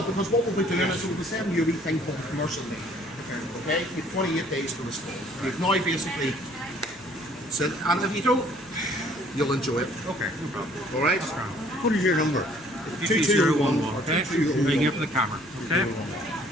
because what we'll be doing is we'll be sending you a wee thing called commercial leave. Okay? You have 28 days to respond. You've now basically said, and if you don't, you'll enjoy it. Okay, no problem. All right? What is your number? 2211. Okay? Ring here for the camera. Okay?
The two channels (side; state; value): left; noise; hum, 29 dB below the sound